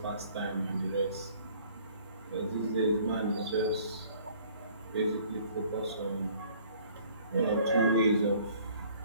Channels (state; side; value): inverted; both; correlation -0.56